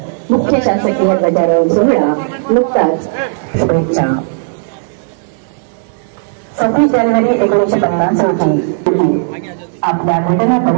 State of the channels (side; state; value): left; silent; digital silence